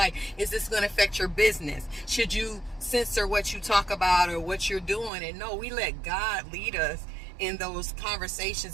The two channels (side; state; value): left; drops out; at 5.1 s